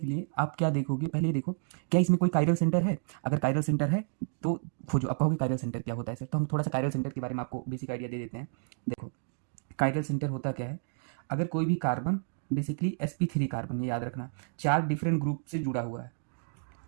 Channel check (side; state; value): left; silent; digital silence